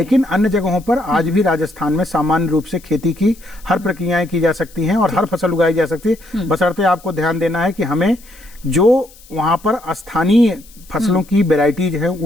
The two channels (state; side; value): noise; left; hiss, 24 dB below the sound